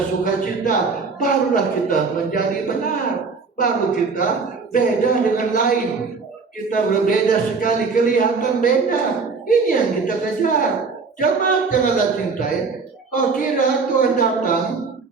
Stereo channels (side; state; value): left; quieter; 4.6 dB